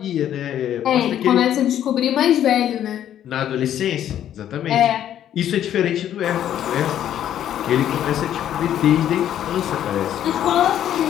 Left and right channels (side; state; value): right; quieter; 10.8 dB